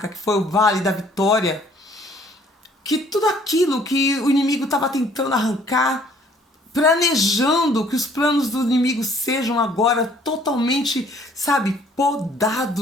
que foi o Vale da Vitória, que tudo aquilo que o inimigo estava tentando arrancar, planejando que os planos do inimigo sejam agora totalmente, sabe,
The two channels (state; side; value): normal; both; correlation 0.59